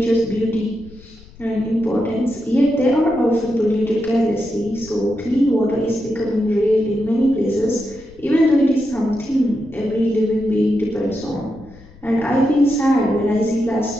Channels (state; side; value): noise; left; rumble, 22 dB below the sound